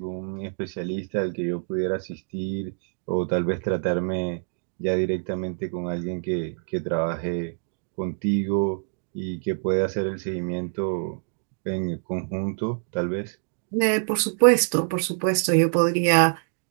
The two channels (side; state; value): left; silent; digital silence